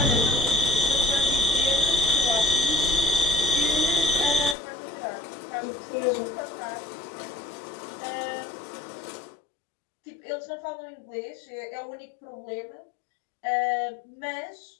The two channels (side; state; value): right; drops out; at 4.5 s